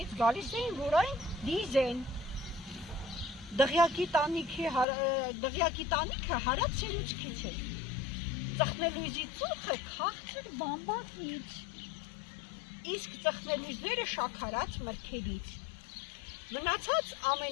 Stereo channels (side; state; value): right; drops out; at 4.9 s